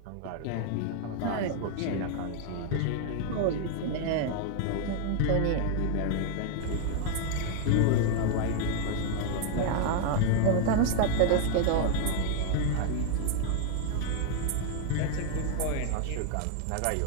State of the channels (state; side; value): different; both; correlation 0.00